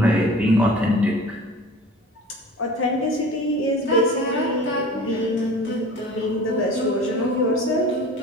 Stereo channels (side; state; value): both; normal; correlation 0.40